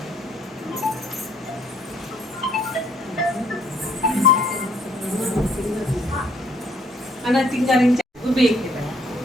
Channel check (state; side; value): normal; both; correlation 0.65